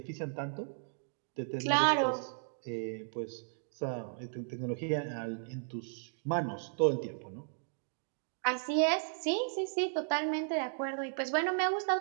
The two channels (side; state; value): left; silent; digital silence